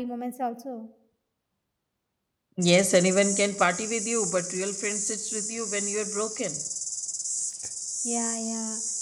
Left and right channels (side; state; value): both; identical; correlation 1.00